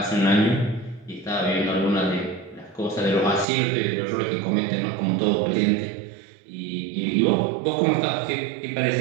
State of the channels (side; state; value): left; drops out; at 3.5 s